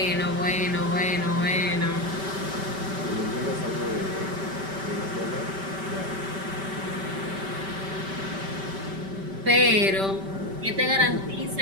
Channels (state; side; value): late; left; 5.1 ms